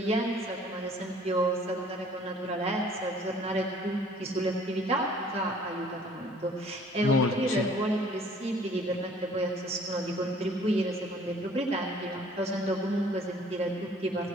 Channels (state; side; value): normal; both; correlation 0.55